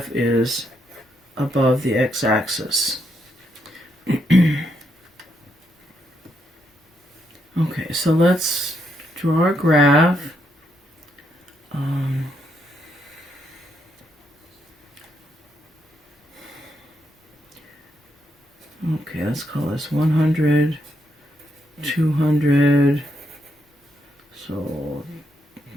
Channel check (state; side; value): normal; both; correlation 0.78